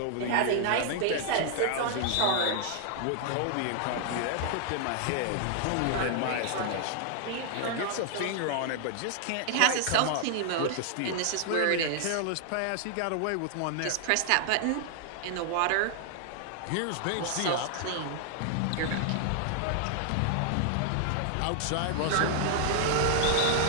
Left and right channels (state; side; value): different; both; correlation 0.00